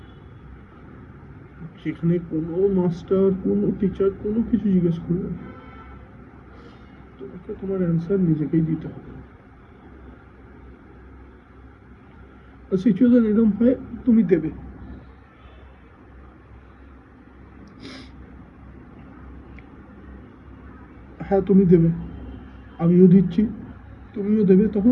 যেখানে কোনো মাস্টার, কোনো টিচার কোনো কিছু জিজ্ঞেস করবে না। তোমাকে তোমার অ্যান্সার নিজেকেই দিতে হবে। সিচুয়েশন এরকম হয়, তুমি দেবে। হ্যাঁ, তুমি দেবে, আমিও দিচ্ছি, তুমিও দেবে।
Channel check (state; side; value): identical; both; correlation 1.00